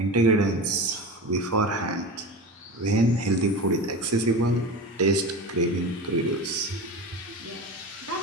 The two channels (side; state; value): both; normal; correlation 0.28